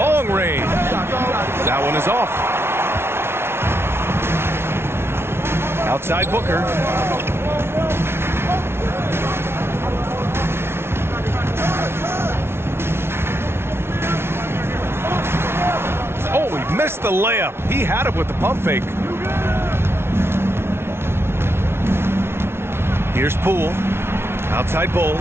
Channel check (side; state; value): left; late; 0.12 ms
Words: range. That one is off. Outside Booker. Oh, he missed the layup. He had it with the pump fake. Here's Poole. Outside Bull.